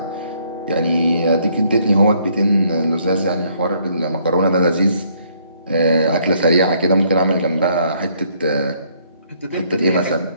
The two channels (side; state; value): both; inverted; correlation -0.67